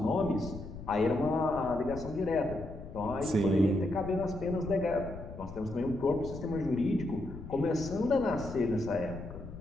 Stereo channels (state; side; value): noise; left; rumble, 12 dB below the sound